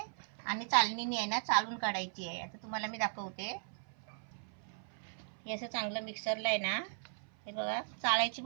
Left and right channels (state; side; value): silent; left; 53 dB below the other